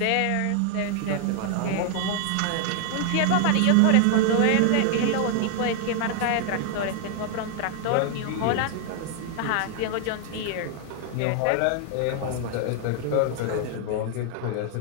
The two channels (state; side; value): different; both; correlation 0.00